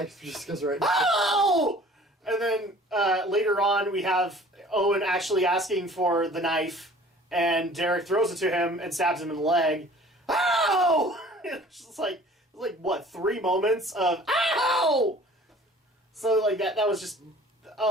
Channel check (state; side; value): normal; both; correlation 0.49